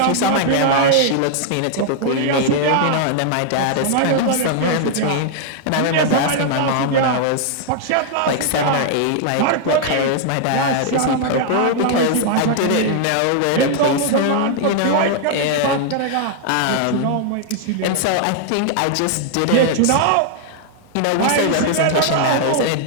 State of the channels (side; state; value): both; different; correlation 0.00